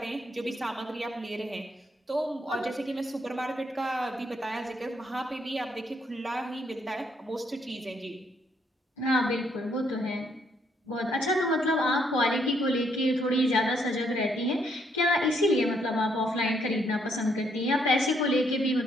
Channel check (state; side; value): normal; both; correlation 0.72